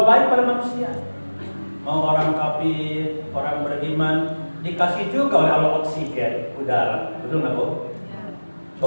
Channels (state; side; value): inverted; both; correlation -1.00